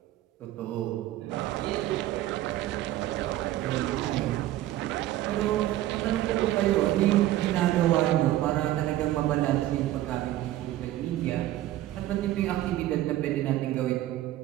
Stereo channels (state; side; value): quieter; left; 14.4 dB